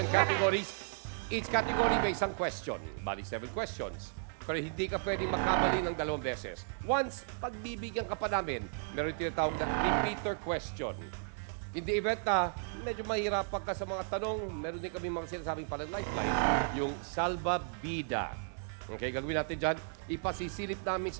categories. Each category may isang question. Bali, 7 questions. Pero hindi ka pwedeng makamali ng 2 beses. Once, pagbibigyan ka pa namin, meron tinatawag na repeater question. In the event na medyo mahirapan ka sa mga tanong, meron din kami mga sinasabing parang lifeline, yung Salva Bida. Okay, gagawin natin dyan. Ipasisilip namin sa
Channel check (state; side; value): silent; left; digital silence